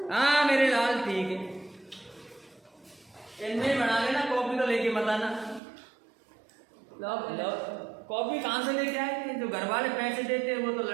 हाँ मेरे लाल ठीक है, इनमें बना लेना। कॉपी तो लेके मत आना। लो कॉपी कहाँ से लेके आए? जो घर वाले पैसे देते हैं वो तो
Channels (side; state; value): left; drops out; at 5.6 s